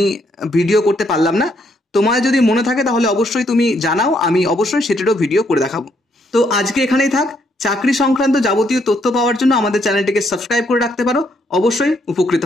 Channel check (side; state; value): both; normal; correlation 0.73